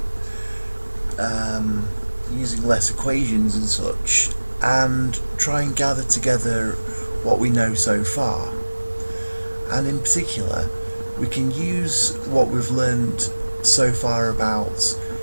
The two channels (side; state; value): both; inverted; correlation -1.00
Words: using less equations and such, and try and gather together what we know so far. And in particular, we can use what we've learned so far about